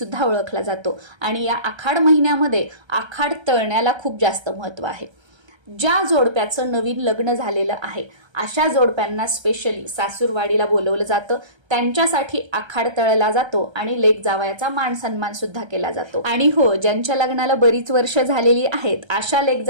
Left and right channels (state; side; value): late; left; 1.3 ms